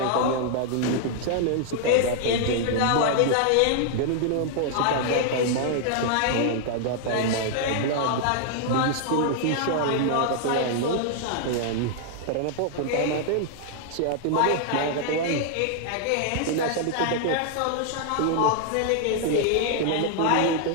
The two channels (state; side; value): different; both; correlation -0.01